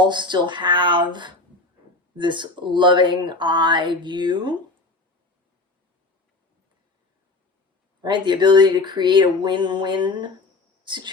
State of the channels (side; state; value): right; quieter; 3.3 dB